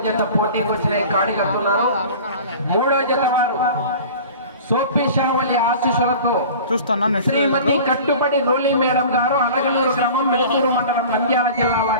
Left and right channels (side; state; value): both; inverted; correlation -0.40